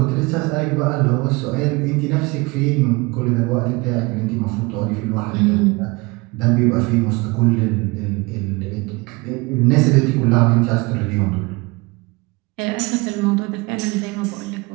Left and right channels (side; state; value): left; quieter; 25.2 dB